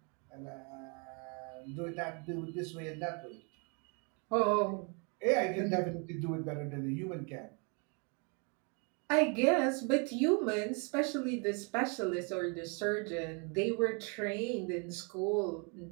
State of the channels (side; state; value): left; quieter; 35.2 dB